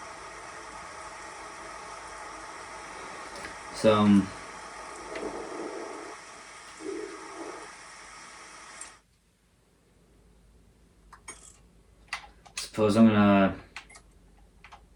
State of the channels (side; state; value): both; identical; correlation 1.00